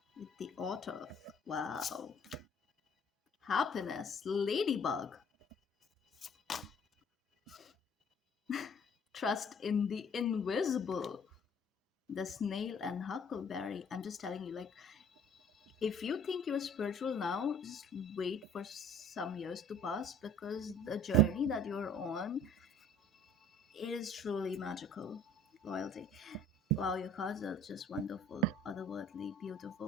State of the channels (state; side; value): normal; both; correlation 0.53